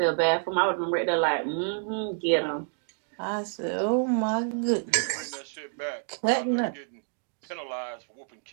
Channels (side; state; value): left; silent; 59 dB below the other